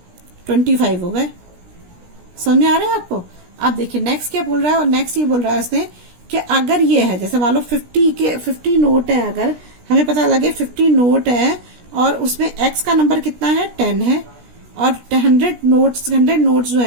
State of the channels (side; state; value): left; late; 17 ms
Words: 25 हो गए। समझ आ रहा है आपको? अब देखिए नेक्स्ट क्या बोल रहा है, और नेक्स्ट ये बोल रहा है उसने कि अगर ये है, जैसे मान लो 50 नोट है, अगर हमें पता लगे 50 नोट है और उसमें x का नंबर कितना है, 10 है, और 100 नोट्स जो